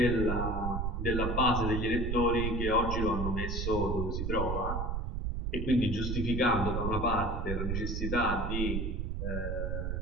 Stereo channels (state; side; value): noise; right; rumble, 1 dB below the sound